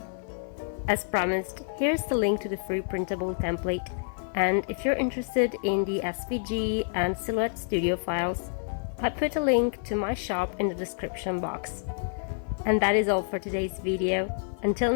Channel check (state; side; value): silent; right; 55 dB below the other